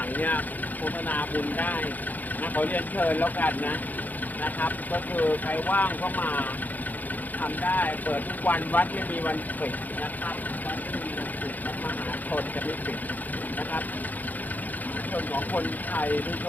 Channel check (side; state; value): right; late; 0.082 ms